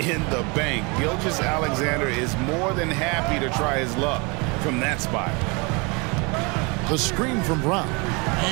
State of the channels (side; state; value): left; quieter; 29.4 dB